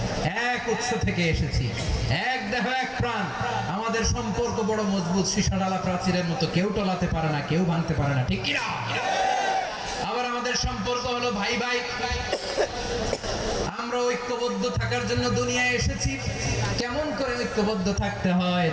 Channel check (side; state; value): both; identical; correlation 1.00